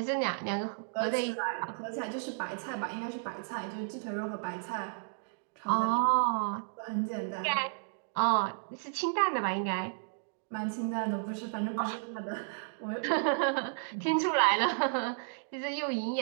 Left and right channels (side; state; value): left; silent; digital silence